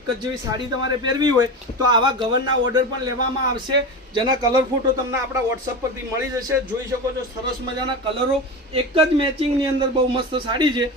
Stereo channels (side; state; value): both; normal; correlation 0.25